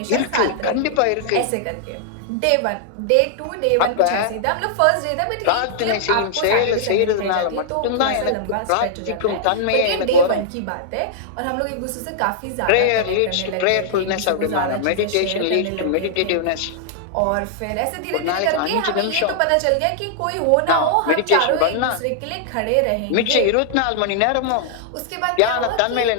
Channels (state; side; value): different; both; correlation -0.01